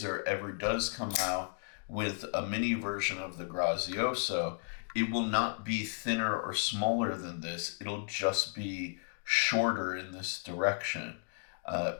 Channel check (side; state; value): right; silent; 55 dB below the other